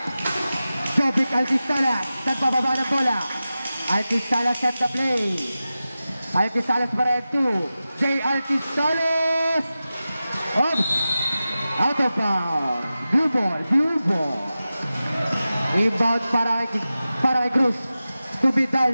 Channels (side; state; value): both; inverted; correlation -0.94